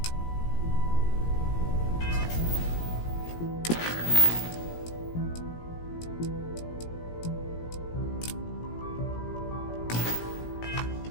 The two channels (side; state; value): right; late; 17 ms